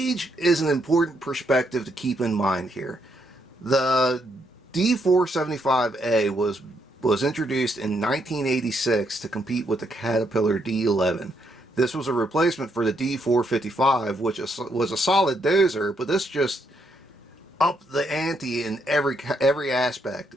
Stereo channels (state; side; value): normal; both; correlation 0.76